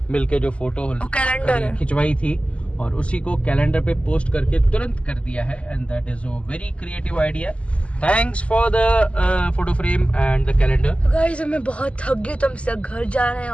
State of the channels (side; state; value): right; late; 0.060 ms